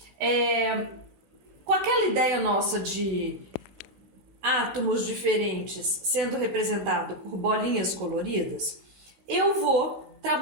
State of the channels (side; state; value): left; late; 16 ms